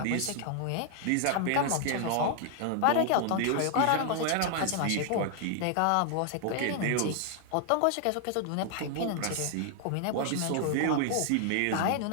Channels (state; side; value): different; both; correlation 0.00